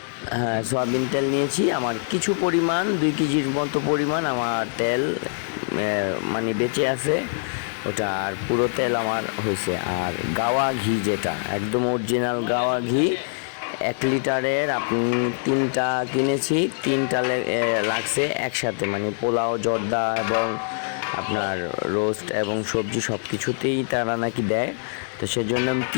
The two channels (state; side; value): silent; right; digital silence